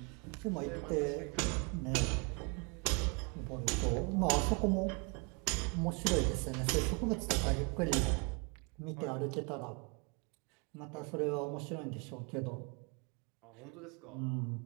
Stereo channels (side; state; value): left; quieter; 32.8 dB